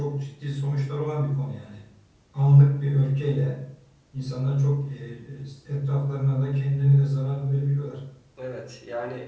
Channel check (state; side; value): identical; both; correlation 1.00